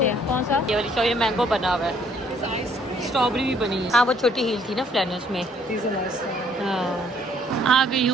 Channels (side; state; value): both; normal; correlation 0.64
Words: हैं। कौन सा? ये वाली ये मैंगो बना हुआ है, स्ट्रॉबेरी भी बनी है। हाँ वो छोटी हील थी ना फ्लैनर्स में। हाँ आ गई